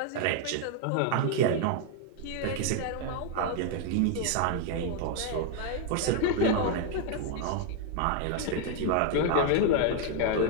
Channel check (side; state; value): both; different; correlation 0.00